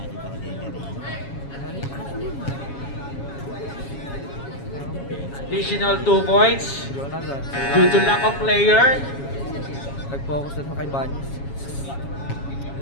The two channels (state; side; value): late; right; 7.2 ms